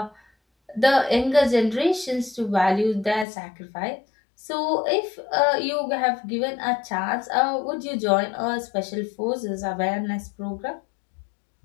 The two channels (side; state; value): right; drops out; at 3.2 s